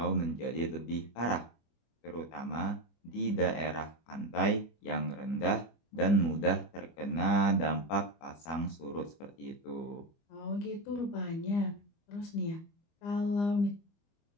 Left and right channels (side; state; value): right; late; 25 ms